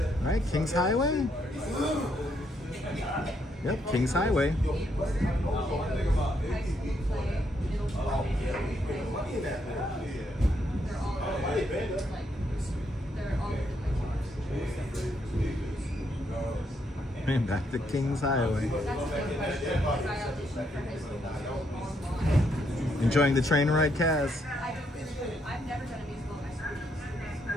right, King's Highway? Yep, King's Highway. And back to King's Highway. Enjoying the train ride, Kaz. I've never done a musical in my school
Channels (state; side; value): normal; both; correlation 0.75